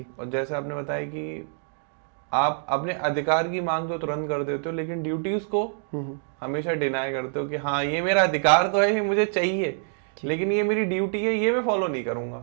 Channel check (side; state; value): left; silent; digital silence